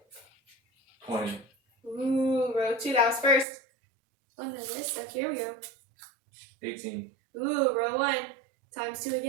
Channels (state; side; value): drops out; left; at 3.5 s